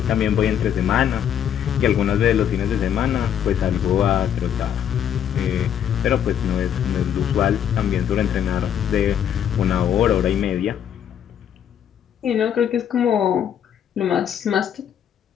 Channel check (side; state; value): right; quieter; 9.3 dB